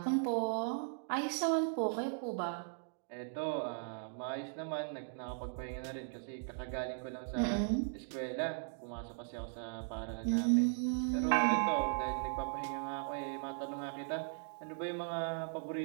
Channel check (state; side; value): silent; left; digital silence